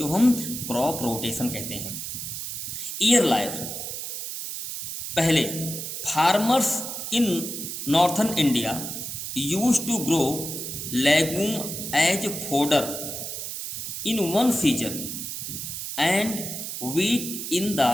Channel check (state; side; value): noise; right; hiss, 6 dB below the sound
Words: हम क्रॉप रोटेशन कहते हैं। ईयर लायर, पहले farmers in northern India used to grow legume as fodder in one season and wheat in the